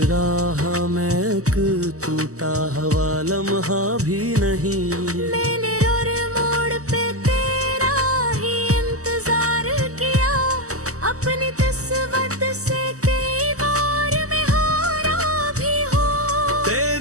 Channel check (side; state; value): left; late; 0.66 ms